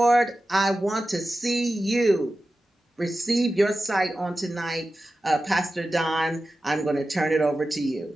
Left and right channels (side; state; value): both; normal; correlation 0.94